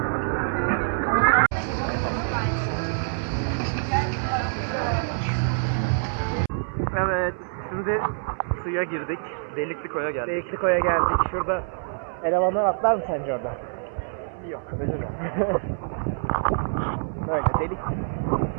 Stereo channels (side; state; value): left; silent; 59 dB below the other